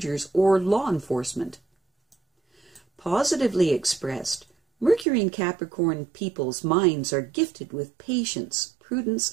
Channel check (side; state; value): left; drops out; at 5.1 s